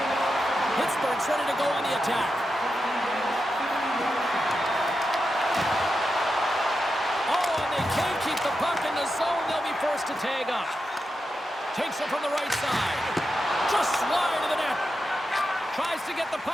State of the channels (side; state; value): both; normal; correlation 0.88